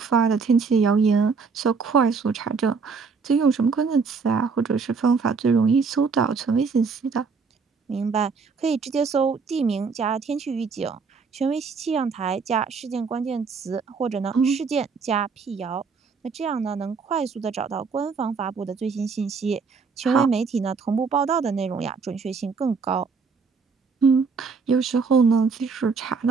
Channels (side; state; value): left; quieter; 5.1 dB